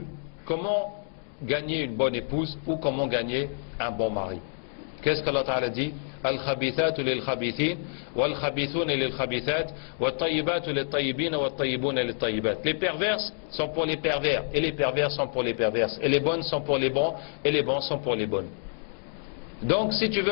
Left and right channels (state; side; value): silent; right; digital silence